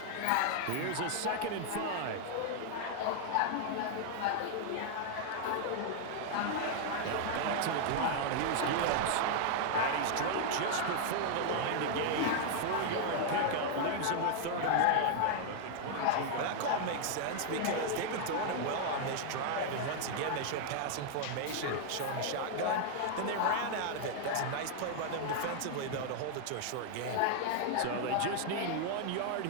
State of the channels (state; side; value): different; both; correlation 0.00